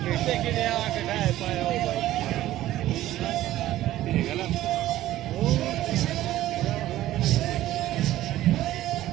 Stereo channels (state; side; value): quieter; left; 14.6 dB